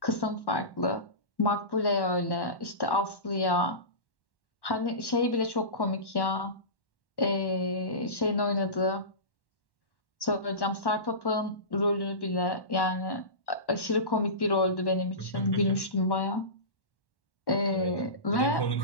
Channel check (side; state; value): right; late; 1.1 ms